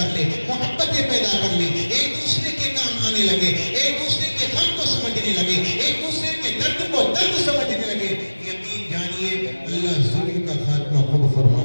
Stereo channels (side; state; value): both; inverted; correlation -1.00